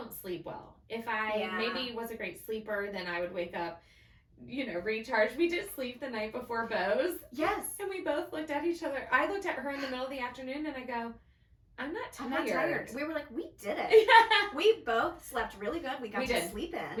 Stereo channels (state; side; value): identical; both; correlation 1.00